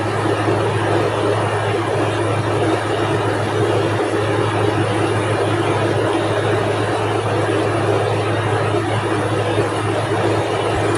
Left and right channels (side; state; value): both; identical; correlation 1.00